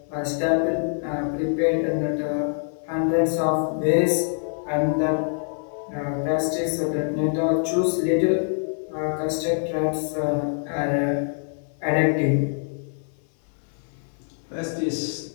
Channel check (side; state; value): right; silent; 58 dB below the other